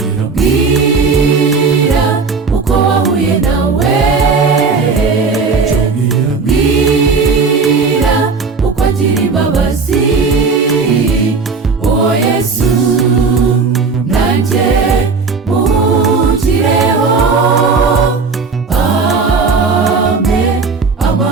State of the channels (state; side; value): quieter; left; 4.7 dB